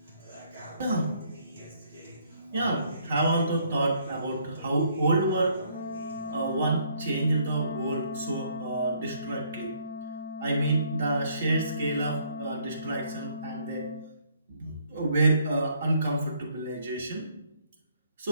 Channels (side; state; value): both; inverted; correlation -0.66